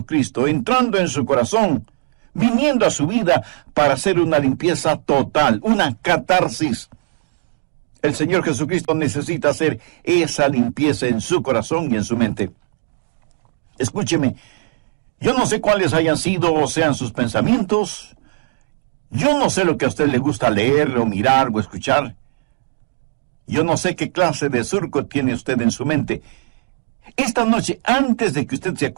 entrando en su corazón, viniendo a su vida para hacer una limpieza total, una catarsis. El Señor Jesucristo necesita hacer esa limpieza en su corazón y en su mente. Escúcheme, yo no sé cuáles hayan sido o sean sus pensamientos. Yo no sé lo que a usted le gusta leer o mirar o escuchar. Yo no sé qué clase de surco tiene usted en su mente. Esta noche, antes de que usted se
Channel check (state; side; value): silent; left; digital silence